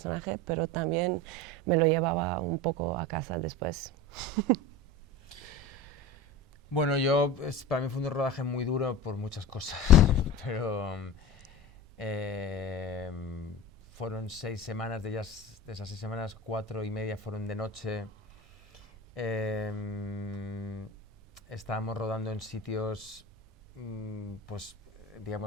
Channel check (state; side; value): normal; both; correlation 0.31